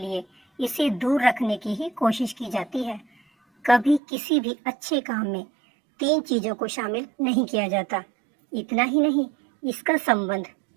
इसे दूर रखने की ही कोशिश की जाती है। कभी किसी भी अच्छे काम में 3 चीजों को शामिल नहीं किया जाता। इतना ही नहीं, इसका संबंध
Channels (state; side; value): drops out; left; at 4.0 s